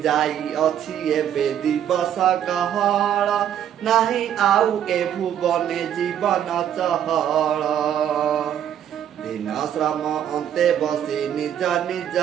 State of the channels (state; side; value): quieter; left; 10.0 dB